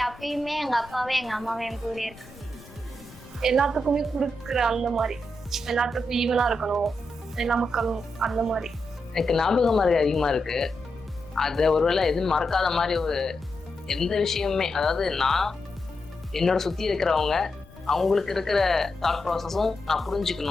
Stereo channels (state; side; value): noise; left; rumble, 21 dB below the sound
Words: எப்பயுமே எங்கள் அப்பாவே எங்கள் அம்மாவே என் கூட இருக்கு. எல்லாத்துக்குமே கொடுக்குற அந்த மாதிரி, எல்லாத்துக்கும் ஈவனாக இருக்கணும், எல்லா மக்களும் அந்த மாதிரி. எனக்கு ஞாபகம் மாதிரி அதிகமாக இருக்கு. அதை ஒருவேளை எதுவும் மறக்காத மாதிரி ஒரு எந்த விஷயமுமே, அதாவது நான் என்னோட சுற்றி இருக்கிறவங்க அவங்களுக்கு இருக்கிற தாட் ப்ராசஸும் நான்